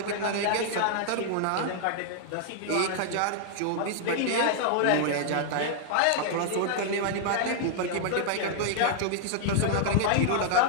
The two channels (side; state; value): both; different; correlation -0.01